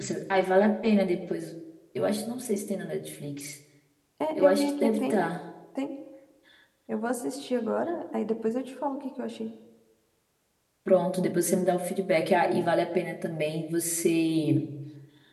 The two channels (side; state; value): both; identical; correlation 1.00